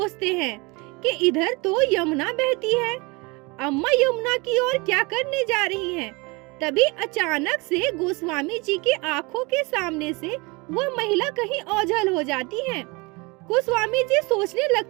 हैं कि इधर तो यमुना बहती है, अम्मा यमुना की ओर क्या करने जा रही हैं। तभी अचानक से गोस्वामी जी की आंखों के सामने से वो महिला कहीं ओझल हो जाती है। गोस्वामी जी सोचने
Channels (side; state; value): left; quieter; 26.7 dB